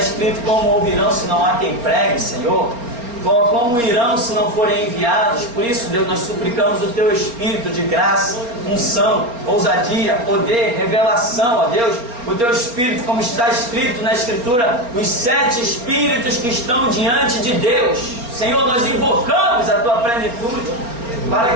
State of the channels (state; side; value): late; left; 4.3 ms